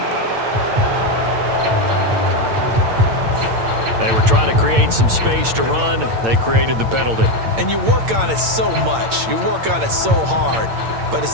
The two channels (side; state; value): left; late; 8.8 ms